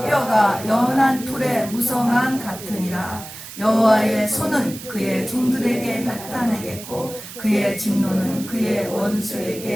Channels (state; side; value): noise; right; hiss, 13 dB below the sound